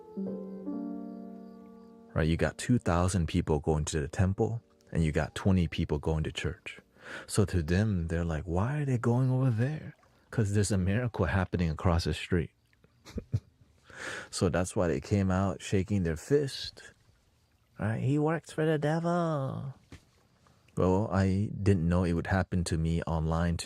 Right? You got 2,000 people going to the temple, and you got 20 people going to church. So to them, they're like, why are they going over there? Because there's a miracle happening across the street. So that's why they came out shaking their fist. Right? He works for the devil. Well, I didn't know it would happen to me online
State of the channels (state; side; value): identical; both; correlation 1.00